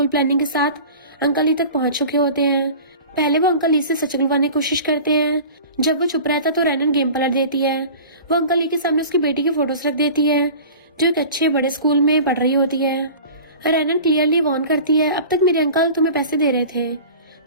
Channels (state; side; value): inverted; both; correlation -0.39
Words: प्लानिंग के साथ अंकल ली तक पहुंच चुके होते हैं। पहले वो अंकल ली से सच बुलवाने की कोशिश करते हैं। जब वो चुप रहता तो रैनन गेम पलट देती है। वो अंकल ली के सामने उसकी बेटी की फोटोज रख देती है जो एक अच्छे बड़े स्कूल में पढ़ रही होती है। रैनन क्लियरली वार्न करती है, अब तक मेरे अंकल तुम्हें पैसे दे रहे थे